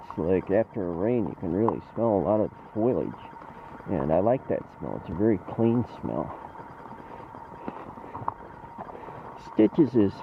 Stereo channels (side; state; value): both; identical; correlation 1.00